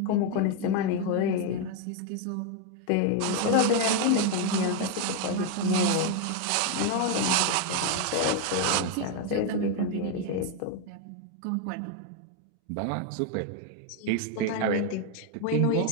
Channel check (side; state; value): both; different; correlation 0.01